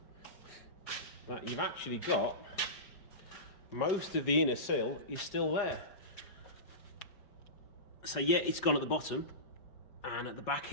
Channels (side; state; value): right; late; 4.9 ms